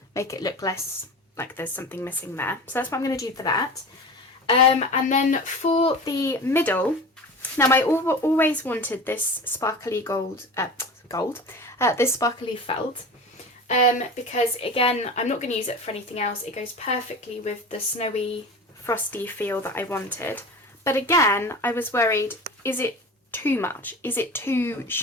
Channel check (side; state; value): both; normal; correlation 0.33